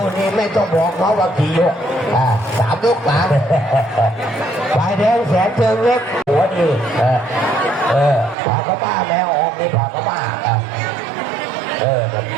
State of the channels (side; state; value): left; drops out; at 8.3 s